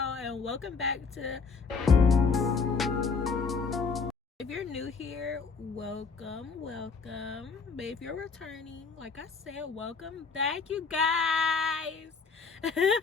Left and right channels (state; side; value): quieter; right; 5.0 dB